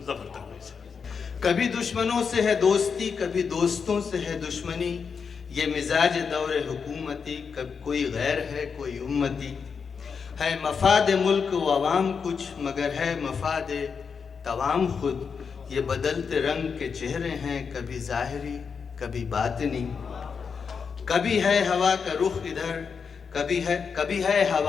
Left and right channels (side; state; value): right; quieter; 5.9 dB